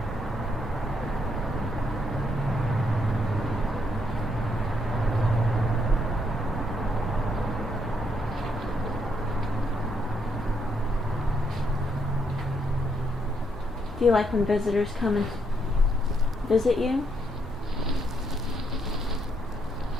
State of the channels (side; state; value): both; normal; correlation 0.75